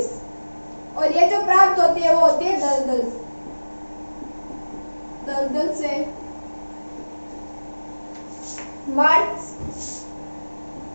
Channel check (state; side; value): inverted; both; correlation -1.00